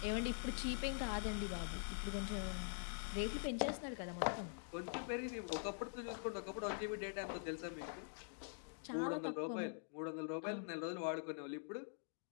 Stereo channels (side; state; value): right; silent; digital silence